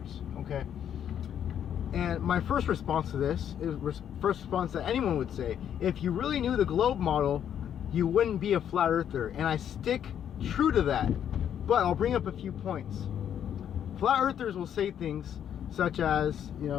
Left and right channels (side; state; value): right; quieter; 9.4 dB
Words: Okay. And my first response to this is first response that anyone would say: if you really knew the globe model, you wouldn't be a flat earther. And I stick true to that. But I'll bring up a few points. Flat earthers will say things such as,